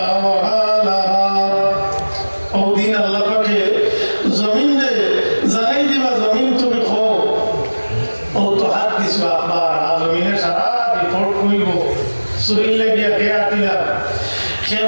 আওহালাহা। ওই দিন আল্লাহ পাকে জমিনে জানাই দিবা, জমিন তুমি কও ও তুহাদ্দিসু আখবারাহা, জমিনে সারা রিপোর্ট কইব, শরীর লাগিয়া খেয়ে আটিলাম, খেয়ে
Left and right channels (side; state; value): both; inverted; correlation -1.00